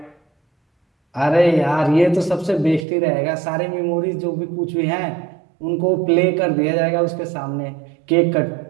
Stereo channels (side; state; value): left; drops out; at 2.9 s